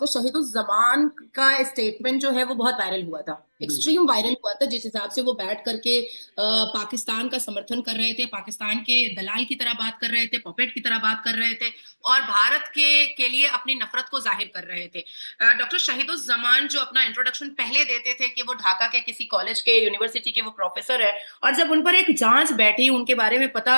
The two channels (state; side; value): inverted; both; correlation -1.00